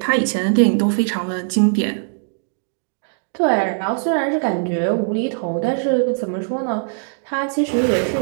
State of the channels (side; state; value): left; silent; digital silence